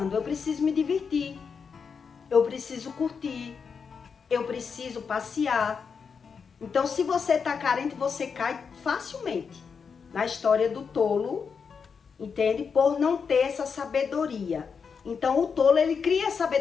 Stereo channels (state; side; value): quieter; right; 5.9 dB